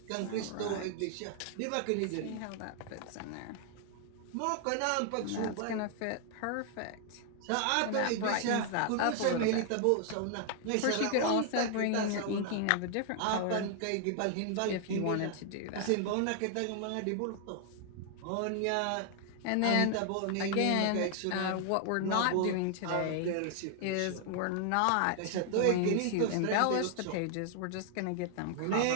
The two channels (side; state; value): both; different; correlation 0.00